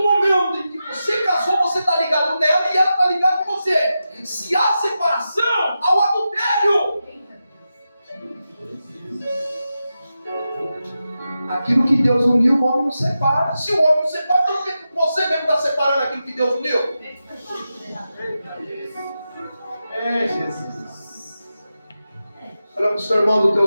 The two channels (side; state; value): both; inverted; correlation -0.90